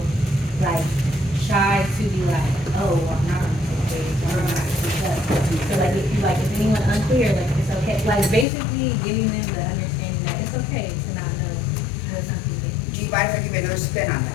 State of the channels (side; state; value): right; drops out; at 8.5 s